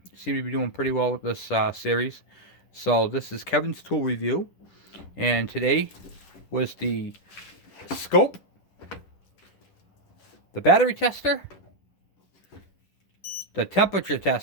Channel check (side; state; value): right; late; 10 ms